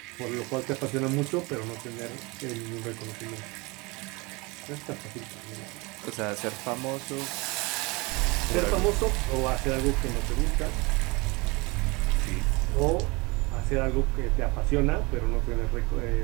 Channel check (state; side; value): quieter; left; 25.9 dB